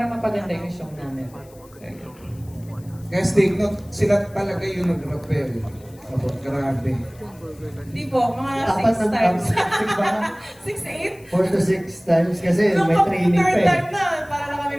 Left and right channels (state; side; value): noise; left; hiss, 27 dB below the sound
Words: mapaganda yung show namin. So, Guys, take note, sila talaga yung nag-rappel. Grabe. Hindi po, mga Apat 6 na times. 6 ba? 6, 8? 4 to 6 times kasi Nung may training pa third eh. time na, para na kami